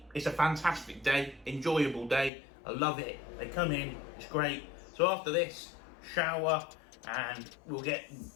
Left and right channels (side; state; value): right; drops out; at 2.3 s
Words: it's a fantastic day, enjoyable day. I love it. They come in, it's great. So after this, shower, and I'll get